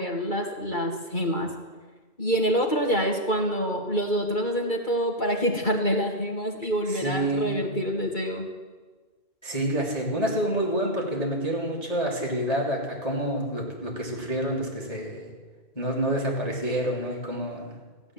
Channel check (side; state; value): right; late; 2.3 ms